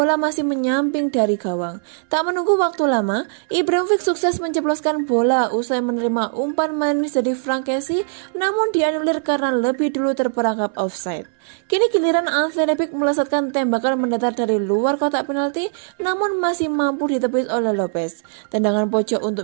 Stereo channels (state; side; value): silent; left; 66 dB below the other